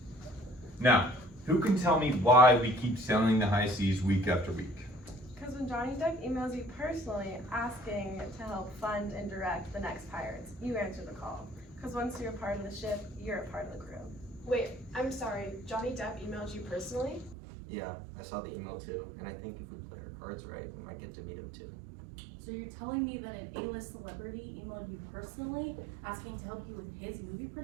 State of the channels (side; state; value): left; drops out; at 17.4 s